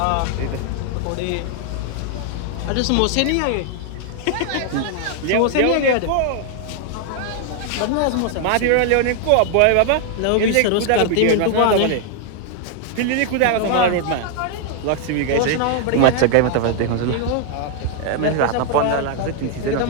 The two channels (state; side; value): different; both; correlation 0.00